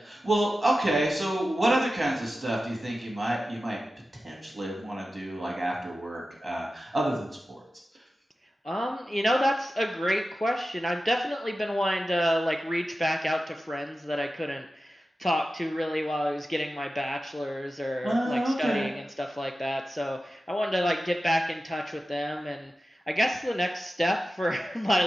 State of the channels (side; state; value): both; normal; correlation 0.94